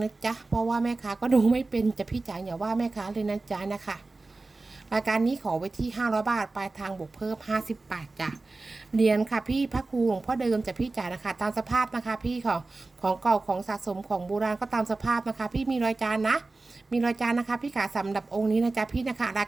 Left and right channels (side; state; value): left; quieter; 3.4 dB